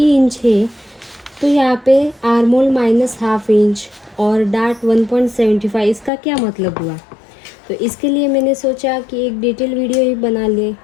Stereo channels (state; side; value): drops out; right; at 6.1 s